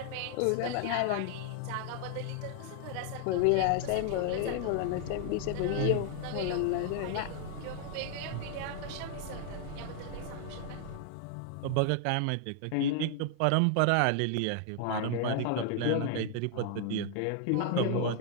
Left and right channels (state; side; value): different; both; correlation 0.00